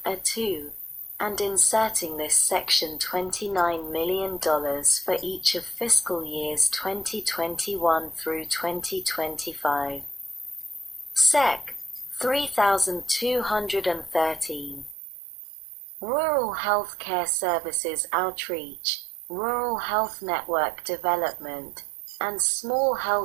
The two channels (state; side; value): drops out; left; at 15.0 s